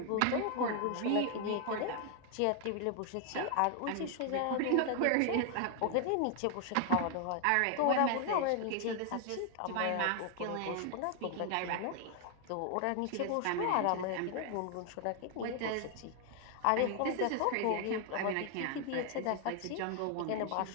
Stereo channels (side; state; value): both; different; correlation 0.00